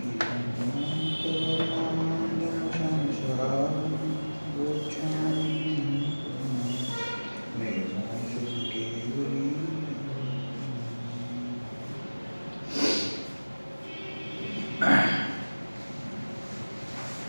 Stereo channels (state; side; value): inverted; both; correlation -1.00